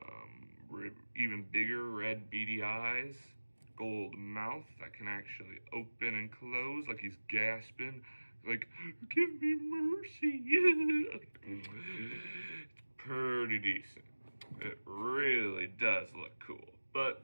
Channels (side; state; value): both; inverted; correlation -1.00